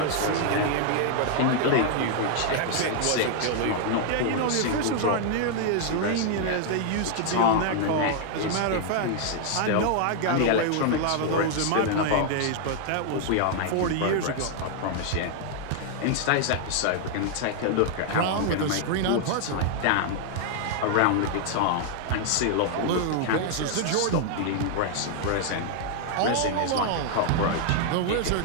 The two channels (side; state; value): both; different; correlation 0.00